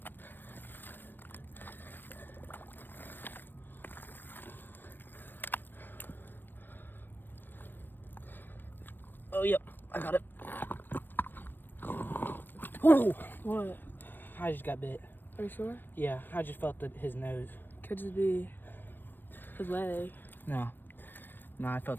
Oh, yep, I got it. Whoa! What? I just got bit. Are you sure? Yeah, I just felt his nose. Could just be his leg. No, I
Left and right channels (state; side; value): late; right; 0.094 ms